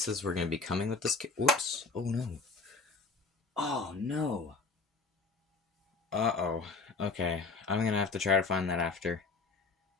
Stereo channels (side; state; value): right; quieter; 3.9 dB